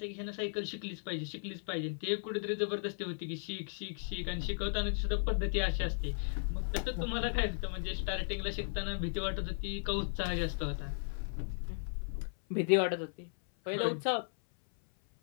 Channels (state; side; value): silent; right; 54 dB below the other